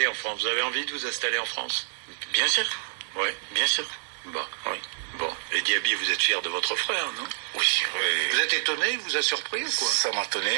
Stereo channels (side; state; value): left; silent; 60 dB below the other